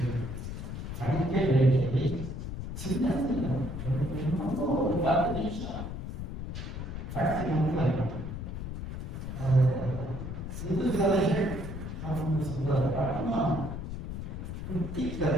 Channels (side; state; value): left; noise; rumble, 6 dB below the sound